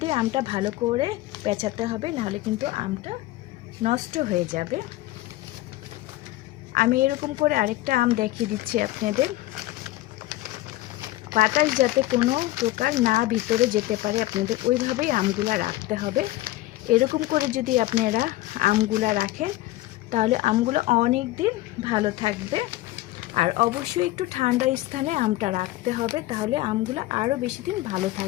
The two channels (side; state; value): right; quieter; 16.9 dB